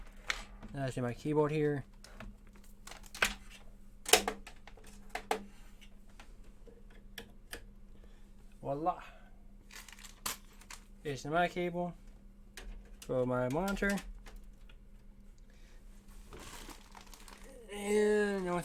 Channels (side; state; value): both; identical; correlation 1.00